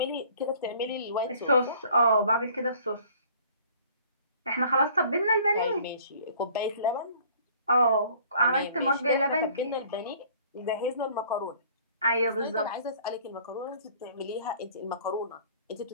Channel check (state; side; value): inverted; both; correlation -0.53